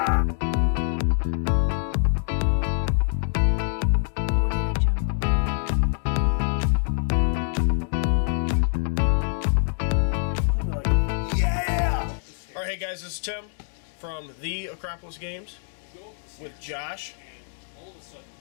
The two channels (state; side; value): silent; right; digital silence